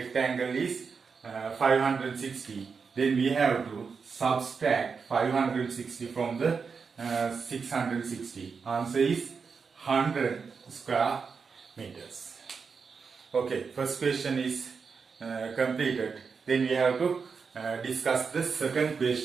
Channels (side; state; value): left; quieter; 5.4 dB